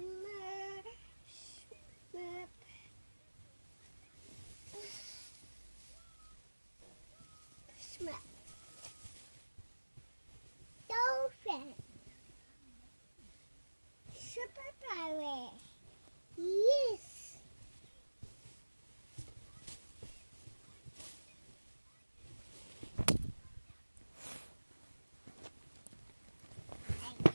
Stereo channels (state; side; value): inverted; both; correlation -1.00